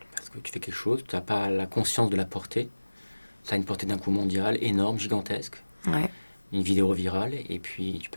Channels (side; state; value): both; inverted; correlation -1.00